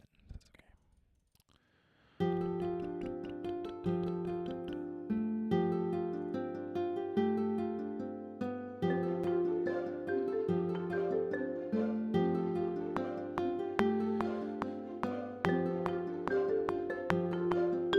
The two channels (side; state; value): both; identical; correlation 1.00